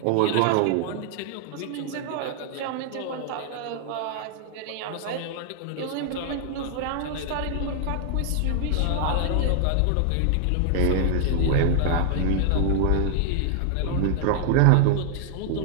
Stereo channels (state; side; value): different; both; correlation 0.00